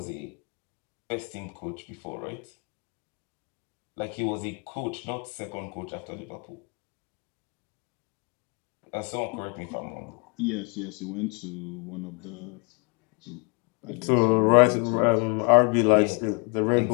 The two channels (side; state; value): right; quieter; 34.4 dB